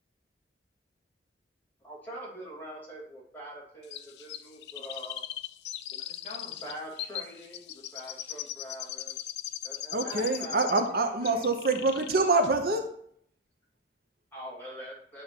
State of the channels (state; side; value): normal; both; correlation -0.09